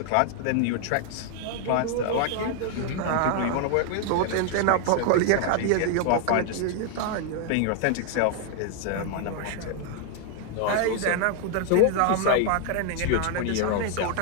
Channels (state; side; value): different; both; correlation 0.00